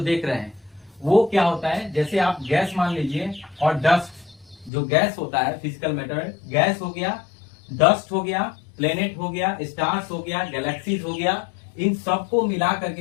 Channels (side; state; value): right; drops out; at 4.7 s